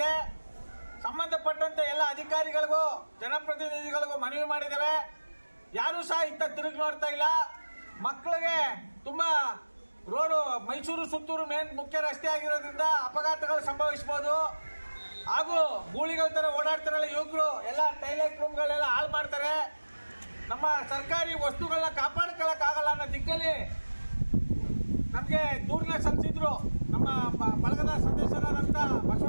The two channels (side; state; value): both; inverted; correlation -1.00